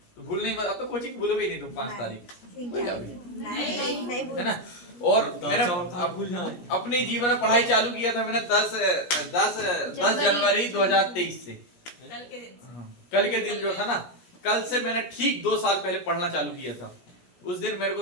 तो भूल नहीं। अब तो कोचिंग भूलोगे नहीं तुम 5 तारीख, है ना? और मैंने अपनी जीवन में पढ़ाई चालू किया था मैंने 10 जनवरी 2023 से। कल के दिन जो था ना, कल से मैंने ठीक 2 साल पहले पढ़ना चालू किया था। उस दिन मेरे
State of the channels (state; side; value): late; right; 17 ms